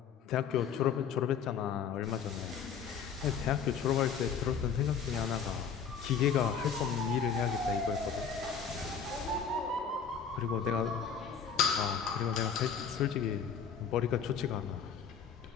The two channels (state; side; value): quieter; right; 6.9 dB